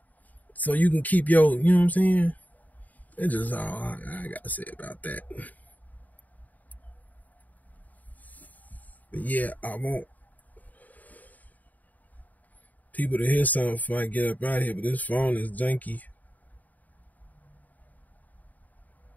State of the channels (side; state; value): right; late; 0.078 ms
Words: so you can keep your. You know what I'm saying? It's just all I gotta say about that. But yeah, I want people to hear something before I get up out of here. But this phone is janky.